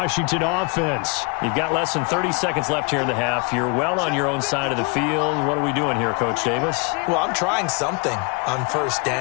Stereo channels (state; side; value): quieter; right; 30.0 dB